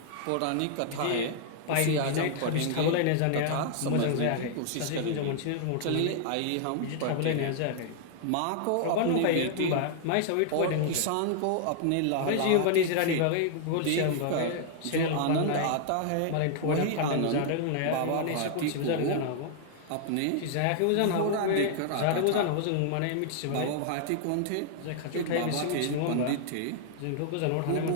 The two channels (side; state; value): both; different; correlation -0.01